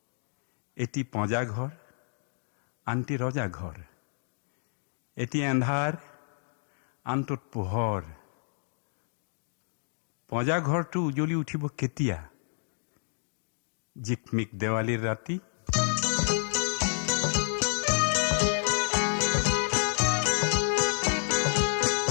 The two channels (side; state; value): right; silent; digital silence